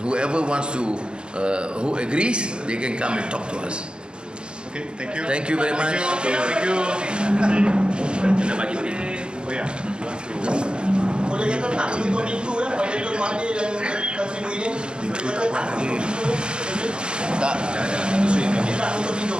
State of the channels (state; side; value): late; left; 0.052 ms